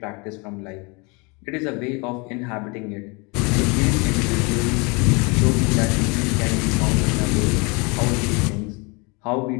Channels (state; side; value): quieter; right; 29.8 dB